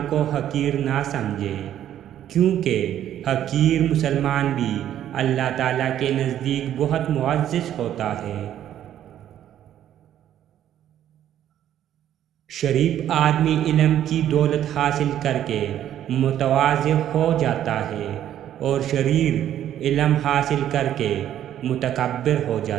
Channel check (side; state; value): left; quieter; 11.1 dB